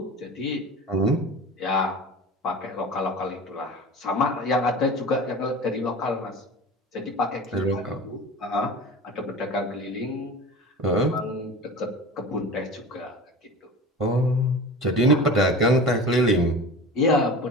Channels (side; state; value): both; normal; correlation 0.35